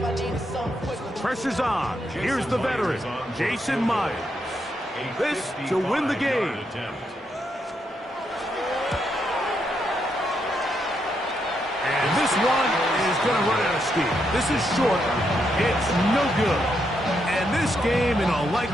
I needed something quicker. Pressure's on. Here's the veteran, Jason Myers. This to win the game. And this one is going to run out of steam. This is short. It's no good. And this game, in all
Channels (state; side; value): normal; both; correlation 0.80